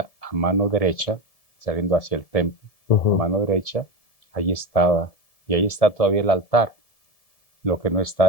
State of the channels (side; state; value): right; late; 1.7 ms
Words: a mano derecha, saliendo hacia el templo, a mano derecha, ahí estaba. Y ahí está todavía el altar. Lo que no